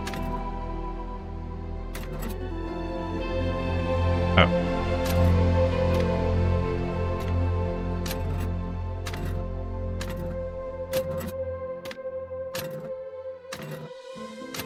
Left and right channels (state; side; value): identical; both; correlation 1.00